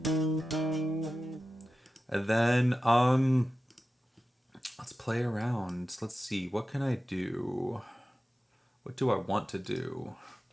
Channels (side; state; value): both; normal; correlation 0.93